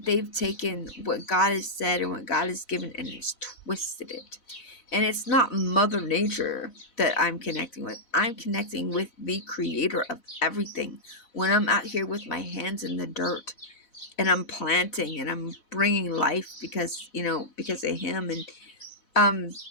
taken what God has said and what God has given and has twisted it. And it's not Mother Nature that I'm connecting with. I'm connecting with the creator of everything. When I'm out here with my hands in the dirt and I'm planting and I'm bringing life because of him, and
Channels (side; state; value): right; late; 4.0 ms